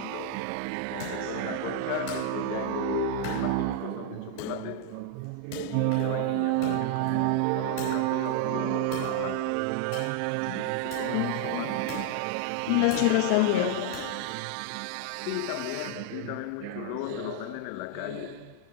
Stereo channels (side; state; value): both; different; correlation 0.00